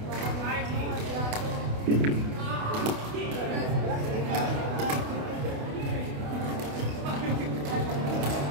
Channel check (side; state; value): left; late; 28 ms